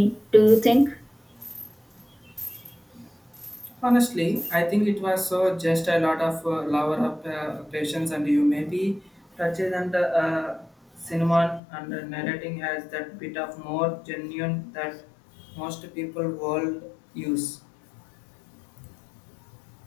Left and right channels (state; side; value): drops out; right; at 11.6 s